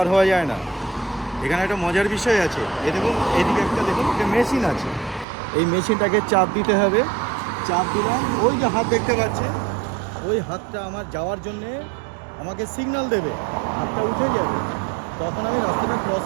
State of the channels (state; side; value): drops out; left; at 5.2 s